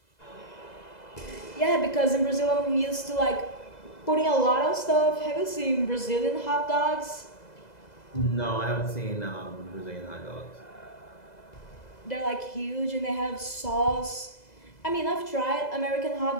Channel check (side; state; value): right; late; 2.0 ms